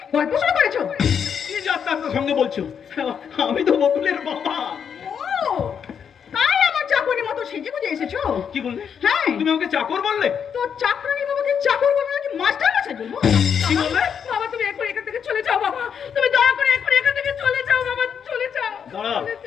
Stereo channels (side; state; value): right; quieter; 7.4 dB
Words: গল্প শুরু করেছো? কি যাত্রার সঙ্গে বলছো? আমি তো বকুলের বাবা। ও, তাই আমার চাকরির মতো সেজে গুজে এসেছো? কি বললে? হ্যাঁ, তুমি আমাকে চাকর বললে? তো চাকরানি বাবাকে চাকর বলবো নাকি মাস্টার মশাই বলবো? কি বললে? বাবা তুমি এখন এখান থেকে চলে যাও বাবা। তুমি দয়া করে এখন এখান থেকে চলে যাও বাবা। চলে যাও। দাঁড়া চলে